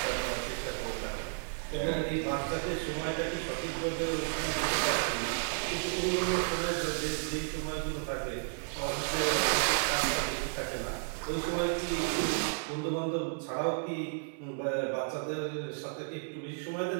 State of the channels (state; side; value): silent; left; digital silence